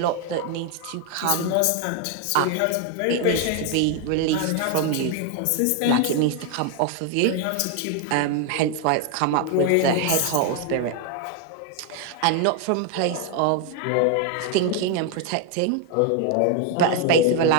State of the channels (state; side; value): different; both; correlation 0.00